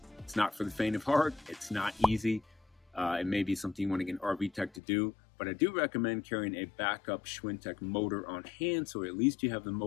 It's not for the faint of heart. It's not easy. It may be something you want to get an RV tech to do, but I do recommend carrying a backup SCHWINTEK motor on hand, so at least you have the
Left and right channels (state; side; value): drops out; right; at 4.8 s